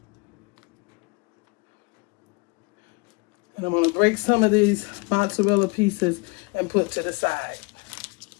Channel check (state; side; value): quieter; right; 29.5 dB